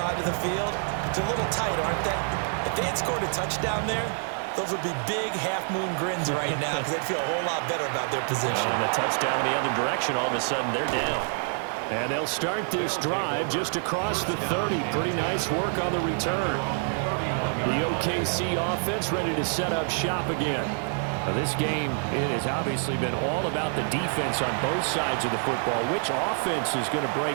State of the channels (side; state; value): left; silent; 56 dB below the other